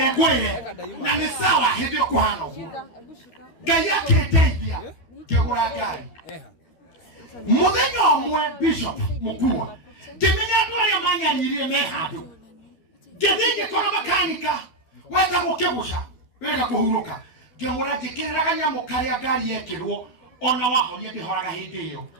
na ni sawa hindi kuhana uguo. Ngai aketeithia kegura ngai. Muthenya omwe bishop mukua. Kimenya twaria manyaririe me handu. Githige kora makanika weta gukibusha wega kuhuruka ngemura jikiraga nyamo karia ngari yekirwo ona wahoria ndihoraga hindi iyo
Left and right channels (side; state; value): right; late; 12 ms